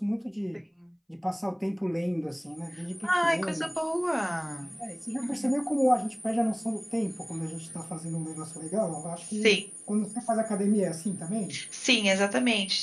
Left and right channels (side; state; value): both; identical; correlation 1.00